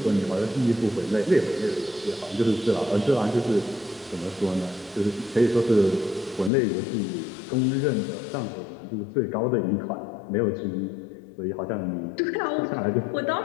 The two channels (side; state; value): right; drops out; at 6.5 s